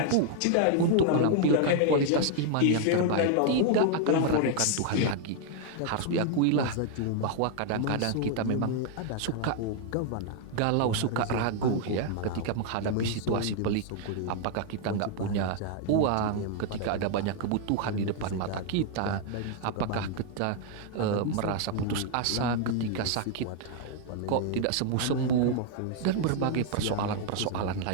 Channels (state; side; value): different; both; correlation 0.00